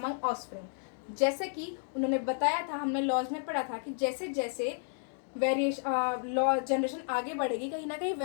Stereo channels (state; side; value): silent; right; digital silence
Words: offspring. जैसे कि उन्होंने बताया था, हमने लॉज में पढ़ा था कि जैसे जैसे लॉ जनरेशन आगे बढ़ेगी, कहीं ना कहीं